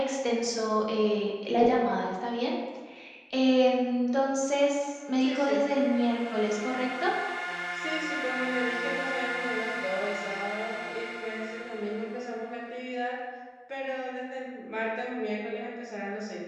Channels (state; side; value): identical; both; correlation 1.00